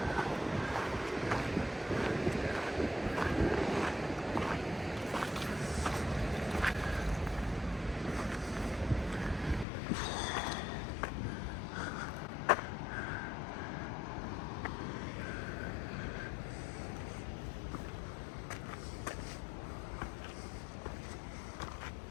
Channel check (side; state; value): right; drops out; at 9.7 s